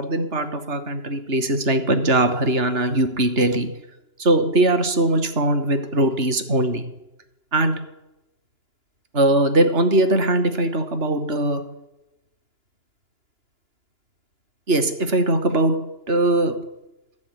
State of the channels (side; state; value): left; late; 2.9 ms